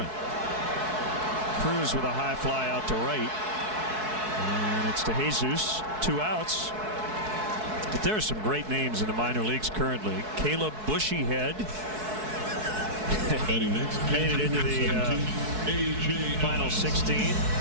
Cruz with a high fly out to right, and it's to Jesus, 2 outs. But there are some great names in the minor leagues currently. Caleb Bushyhead made it into the final 16.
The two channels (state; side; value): late; left; 4.6 ms